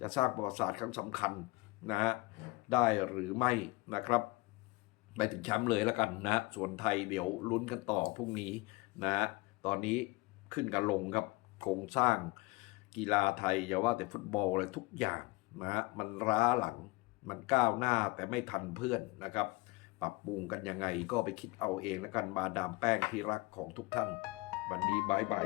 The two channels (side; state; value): right; quieter; 22.7 dB